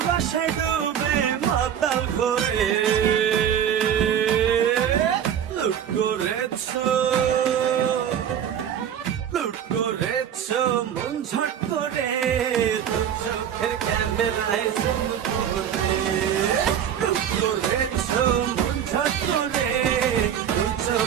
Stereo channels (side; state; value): left; quieter; 9.2 dB